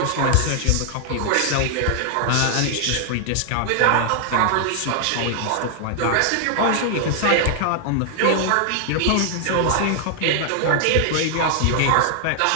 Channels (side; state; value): both; different; correlation 0.00